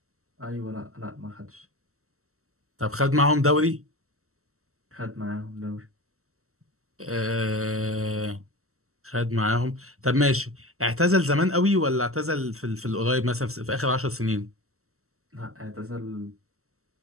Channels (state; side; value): late; left; 0.63 ms